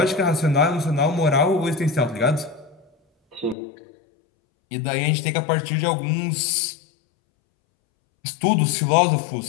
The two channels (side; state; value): right; drops out; at 3.6 s